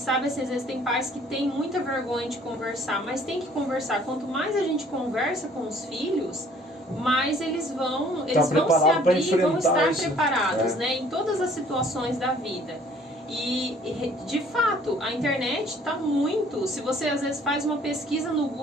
assim, às vezes tem pais que têm muita vergonha de conversar, mas tem que conversar. Quanto mais a gente conversa com os filhos, mais eles vão se abrir e vão estar preparados, né? Em todas as situações da vida. E, de fato, a internet está muito... Se você, às vezes, faz uma pesquisa no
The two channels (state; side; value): normal; both; correlation 0.57